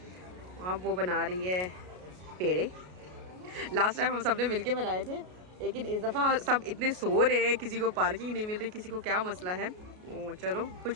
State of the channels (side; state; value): left; late; 33 ms